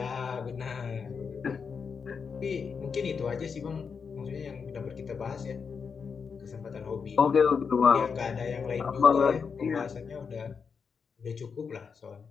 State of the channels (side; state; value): right; quieter; 5.9 dB